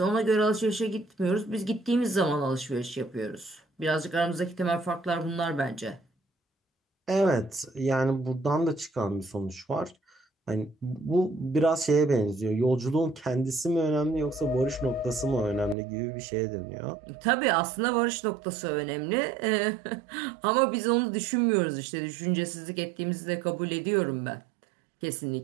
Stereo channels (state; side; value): drops out; left; at 15.8 s